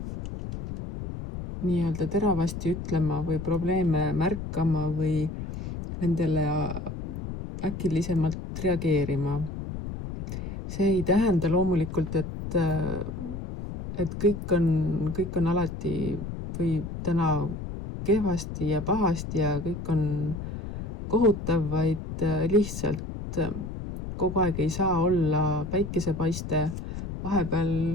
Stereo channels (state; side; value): noise; left; rumble, 7 dB below the sound